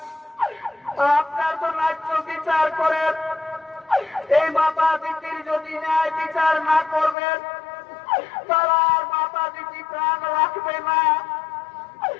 আপনার তো ন্যায্য বিচার করেন। এই মাতা দিদির যদি ন্যায় বিচার না করবেন, তারা আর মাতা দিদি প্রাণ রাখবে না।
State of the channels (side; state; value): right; drops out; at 7.2 s